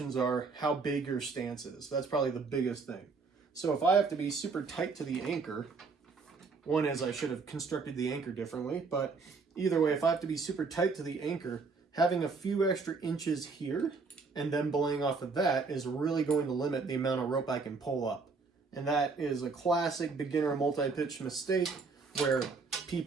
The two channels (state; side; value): quieter; left; 4.5 dB